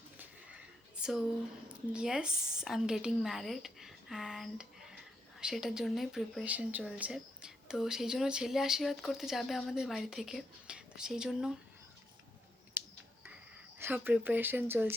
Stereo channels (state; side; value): normal; both; correlation 0.80